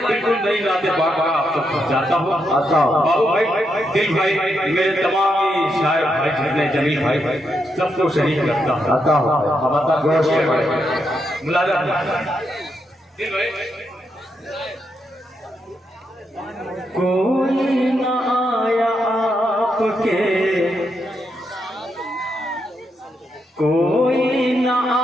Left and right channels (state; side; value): normal; both; correlation 0.81